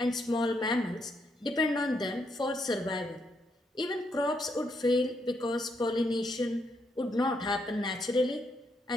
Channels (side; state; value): both; normal; correlation 0.77